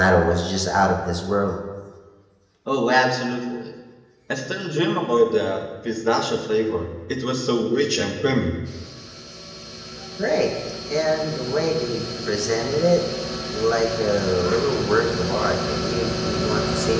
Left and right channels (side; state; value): both; identical; correlation 1.00